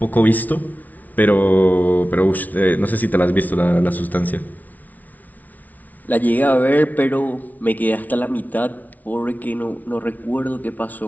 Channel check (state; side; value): late; right; 0.076 ms